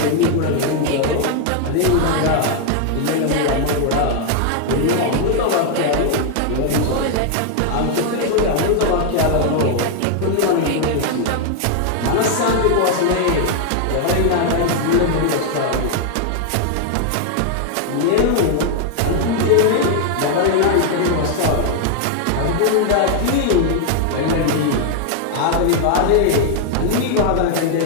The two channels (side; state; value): both; different; correlation 0.00